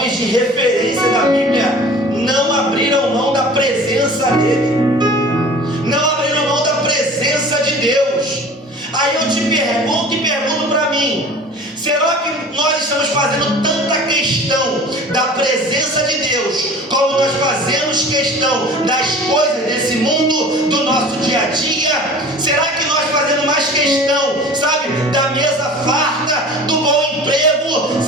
de referência da Bíblia, não abriram mão da presença dele, não abriram mão da presença de Deus. Aí eu te pergunto e pergunto para mim: será que nós estamos fazendo tanta questão da presença de Deus como nós fazemos questão das coisas desse mundo, do nosso dia a dia? Será que nós fazemos mais questão, sabe, da mesa farta, do bom emprego?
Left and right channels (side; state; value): both; normal; correlation 0.42